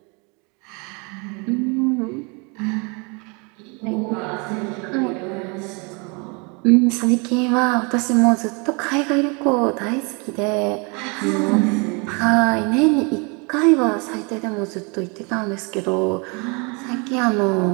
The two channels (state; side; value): quieter; left; 31.7 dB